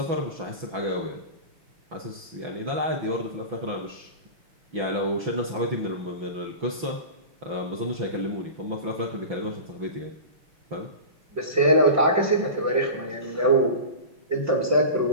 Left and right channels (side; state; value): left; late; 6.0 ms